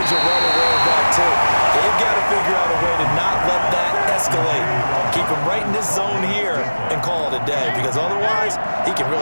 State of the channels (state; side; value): inverted; both; correlation -1.00